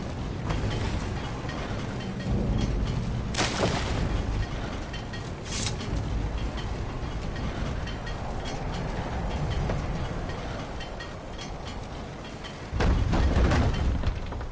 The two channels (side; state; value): both; identical; correlation 1.00